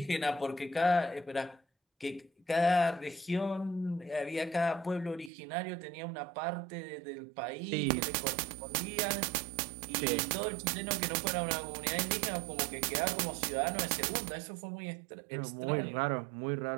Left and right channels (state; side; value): drops out; left; at 5.3 s